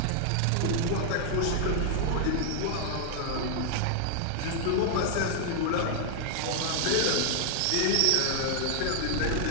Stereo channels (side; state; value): both; different; correlation 0.00